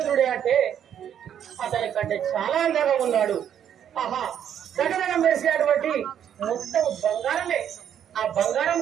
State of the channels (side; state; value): left; quieter; 9.4 dB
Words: అంటే అతని కంటే చాలా అందంగా ఉన్నాడు. ఆహా, దగ్గరగా మెరిసేటువంటి మొత్తం బంగారమే. ఆ బంగారం